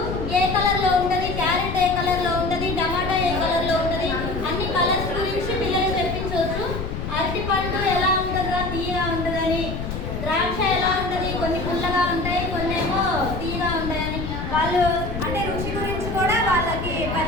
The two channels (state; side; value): noise; left; rumble, 5 dB below the sound